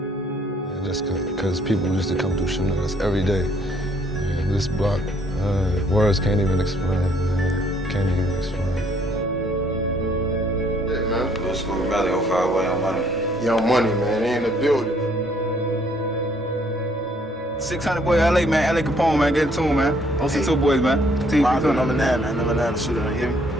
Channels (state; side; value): normal; both; correlation 0.65